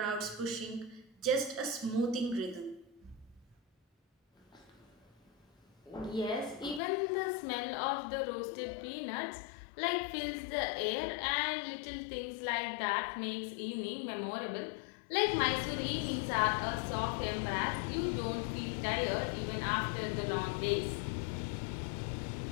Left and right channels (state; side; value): drops out; right; at 6.8 s